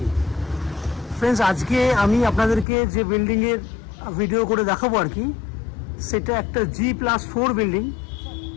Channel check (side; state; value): right; drops out; at 2.7 s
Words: Friends आज के आमी आपनादेरके जे बिल्डिंगेर भिडियो करे देखाबो आर कि सेटा एकटा G+4 बिल्डिंग।